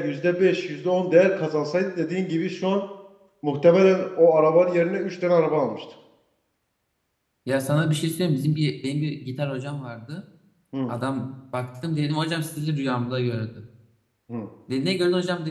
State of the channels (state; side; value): identical; both; correlation 1.00